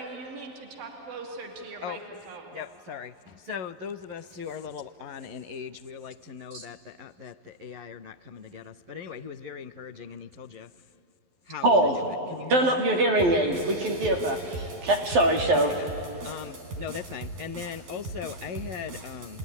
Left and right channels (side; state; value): left; late; 11 ms